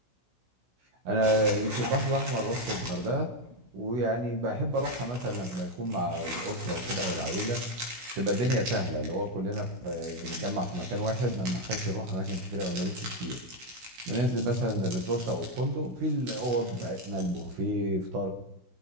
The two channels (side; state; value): left; late; 16 ms